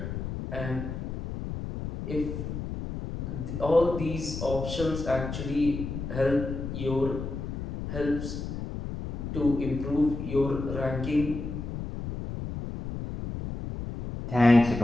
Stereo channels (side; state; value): left; noise; rumble, 6 dB below the sound